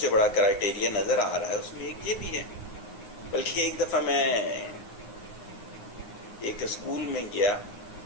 بڑا کرائٹیریا نظر آ رہا ہے اس میں ایک یہ بھی ہے بلکہ ایک دفعہ میں ایک اسکول میں گیا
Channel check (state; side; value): late; right; 9.6 ms